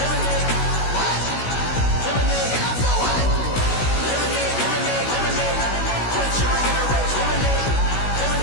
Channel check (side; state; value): right; late; 16 ms